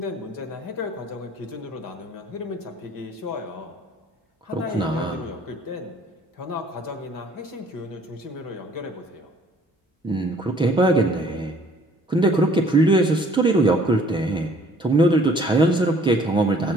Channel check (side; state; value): both; normal; correlation 0.57